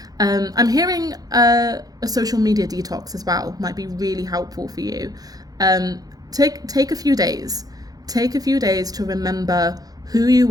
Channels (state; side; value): late; left; 0.18 ms